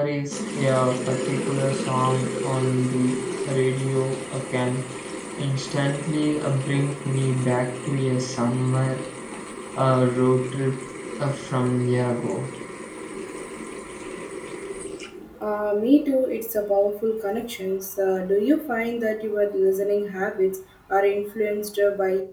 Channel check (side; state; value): both; identical; correlation 1.00